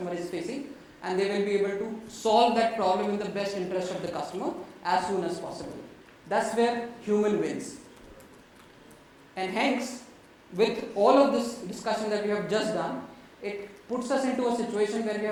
is facing, and they will be able to solve that problem in the best interest of the customer as soon as possible. That's where human wins. And hence, with all of this discussion that we have just done, it puts us into a situation where we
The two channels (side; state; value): both; identical; correlation 1.00